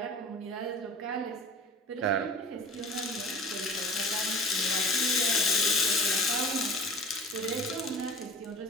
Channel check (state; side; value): normal; both; correlation 0.40